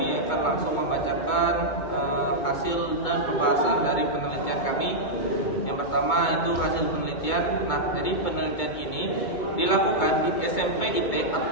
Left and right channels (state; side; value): late; right; 2.2 ms